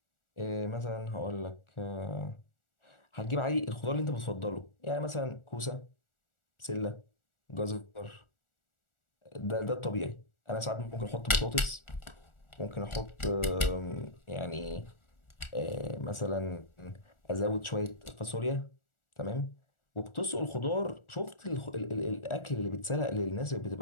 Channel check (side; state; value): right; late; 1.4 ms